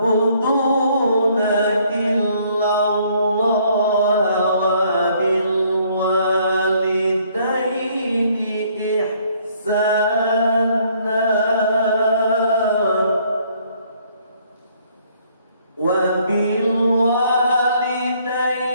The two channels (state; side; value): inverted; both; correlation -0.64